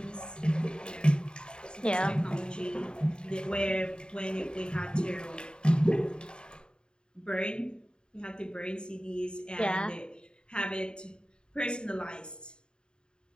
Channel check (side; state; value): right; late; 0.049 ms